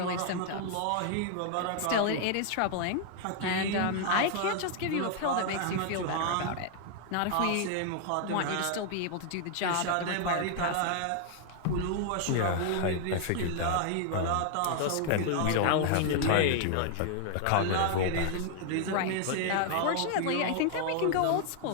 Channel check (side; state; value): both; different; correlation 0.00